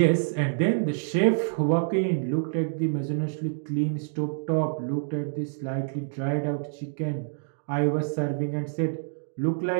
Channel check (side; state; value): left; silent; digital silence